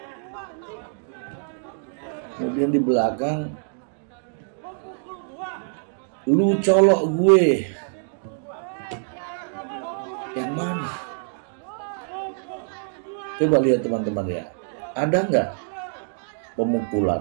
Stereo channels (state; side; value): silent; left; digital silence